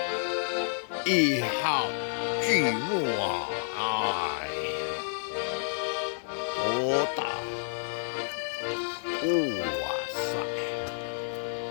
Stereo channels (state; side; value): silent; right; digital silence